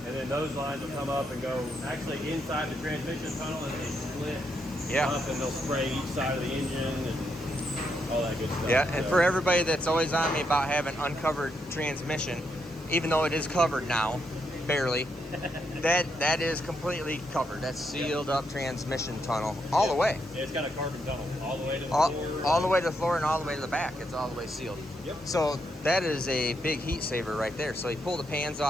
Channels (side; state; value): both; normal; correlation 0.79